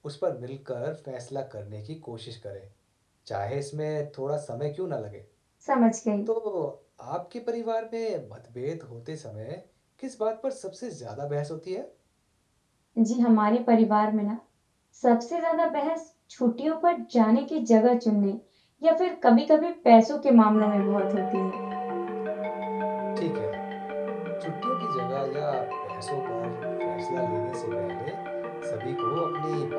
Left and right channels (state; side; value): identical; both; correlation 1.00